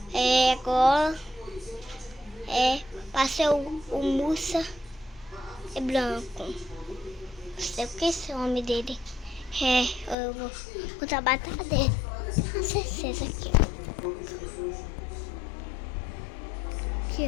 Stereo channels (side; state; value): right; drops out; at 10.2 s